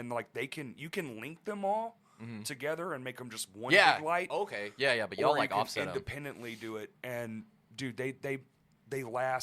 like you can link them all together and make them just one Yeah. big light. Okay. Yeah. But y'all or like you can offset 'em. independently do it, and dude, they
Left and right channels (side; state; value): both; identical; correlation 1.00